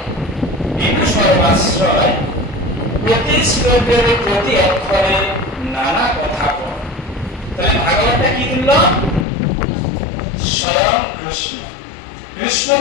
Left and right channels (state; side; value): drops out; right; at 9.2 s